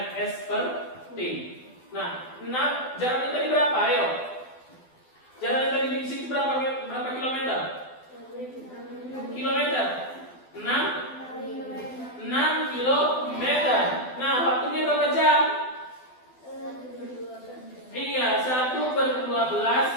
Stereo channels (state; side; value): late; right; 12 ms